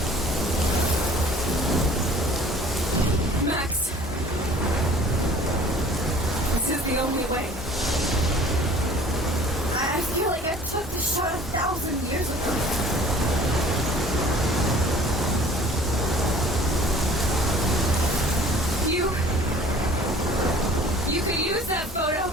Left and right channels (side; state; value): both; normal; correlation 0.50